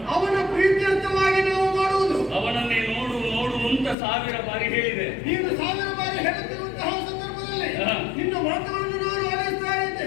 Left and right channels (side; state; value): right; drops out; at 4.0 s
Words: ಅವನ ಪ್ರೀತ್ಯರ್ಥವಾಗಿ ನಾವು ಮಾಡುವುದು. ಅವನನ್ನೇ ನೋಡು ನೋಡು ಅಂತ 1000 ಬಾರಿ ಹೇಳಿದೆ. ನೀನು 1000 ಬಾರಿ ಹೇಳುತ್ತಿರುವಂತಹ ಸಂದರ್ಭದಲ್ಲಿ ನಿನ್ನ ಮಾತುಗಳನ್ನು ನಾನು ಆಲಿಸ್ತಾ ಇದ್ದೆ.